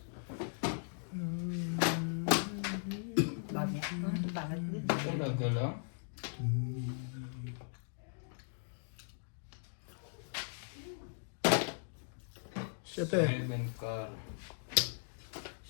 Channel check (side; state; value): right; silent; digital silence